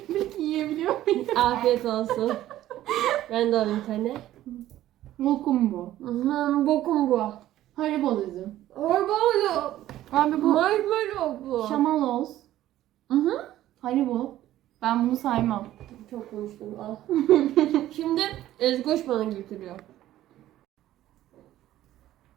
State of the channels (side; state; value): left; quieter; 13.8 dB